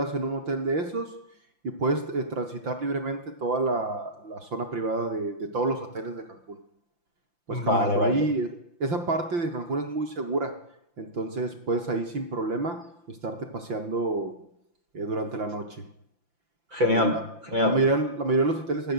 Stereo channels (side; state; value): left; late; 5.8 ms